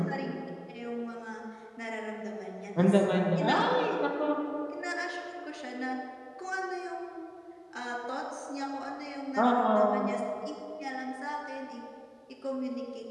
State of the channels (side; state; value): both; identical; correlation 1.00